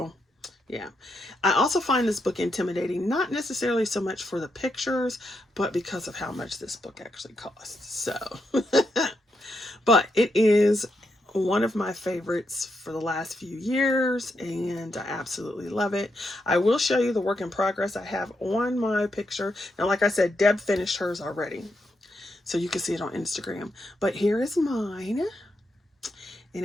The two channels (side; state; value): both; normal; correlation 0.82